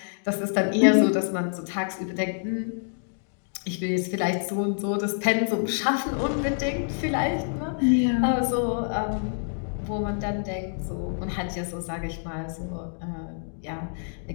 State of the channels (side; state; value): right; silent; digital silence